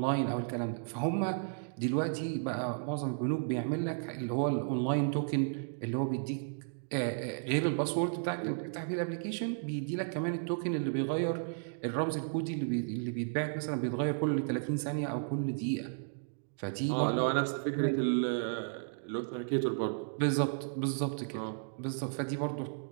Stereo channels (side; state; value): left; silent; digital silence